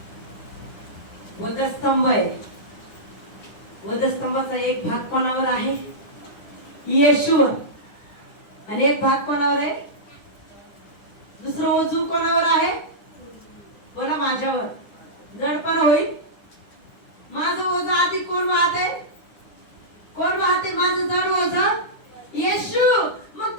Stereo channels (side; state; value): right; late; 9.8 ms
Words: वधस्तंभ आहे. वधस्तंभाचा एक भाग कोणावर आहे? येशूवर. आणि एक भाग कोणावर आहे? दुसरं ओझू कोणावर आहे? बोला, माझ्यावर. जडपण होईल. माझं ओझं आधी कोण वाहते? कोण वाहते माझं जड ओझं? येशू. मग